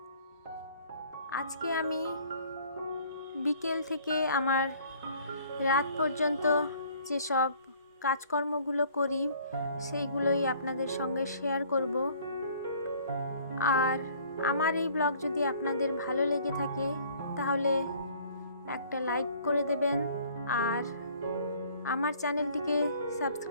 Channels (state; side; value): inverted; both; correlation -0.55